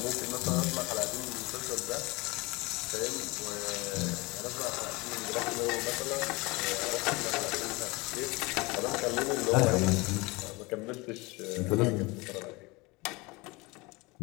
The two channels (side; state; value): right; quieter; 24.7 dB